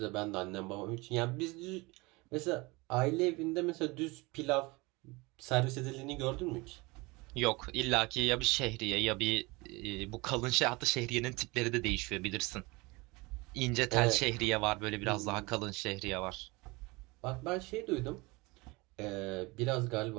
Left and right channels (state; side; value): quieter; left; 24.4 dB